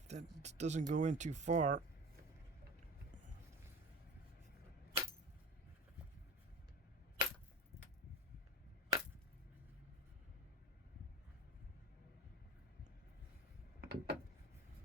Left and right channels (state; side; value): normal; both; correlation 0.32